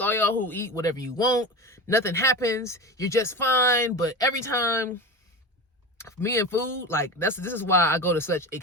all y'all who eat whatever you want. Nothing happens. You're just fine. But every time, me and food, like this is why I go to such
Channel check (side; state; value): both; normal; correlation 0.27